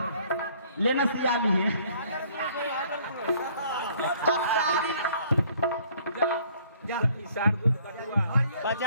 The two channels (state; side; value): inverted; both; correlation -0.60